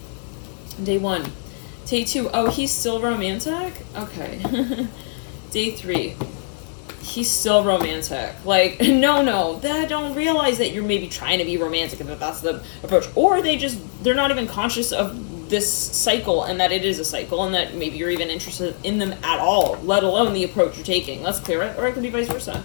Day 1. Day 2, oh, he's still romantic? Okay. Day 3. He's still romantic. Like, no, they don't realize that you're maybe trying to be romantic and that that's the approach. Or they're not even conscious of this cycle and that it is a cycle and that maybe you're even interested in them at all, let alone the approach you're taking. Let's clear it. Or it could be vice versa,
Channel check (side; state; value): right; silent; 64 dB below the other